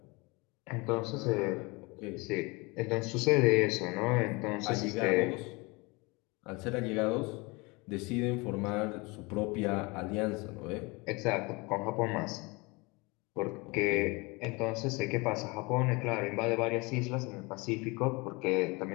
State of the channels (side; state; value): right; quieter; 26.3 dB